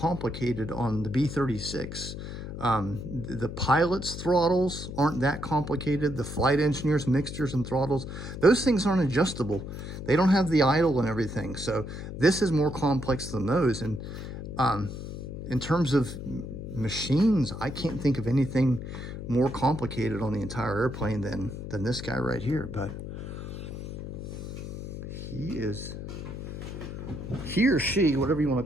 on the B-36. The pilot's throttles aren't that complicated. The flight engineers, mixtures and throttles, those things aren't adjustable. They don't have the idle and everything. So this is more complex than those. And in terms of machines, I can't think of anything more complicated on the entire airplane than this guy right here. But he or she, whatever you want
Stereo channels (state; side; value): noise; left; hum, 8 dB below the sound